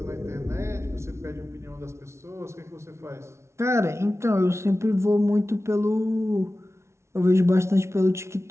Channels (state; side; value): late; left; 0.13 ms